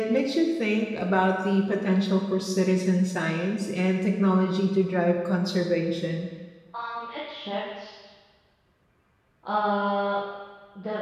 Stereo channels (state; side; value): identical; both; correlation 1.00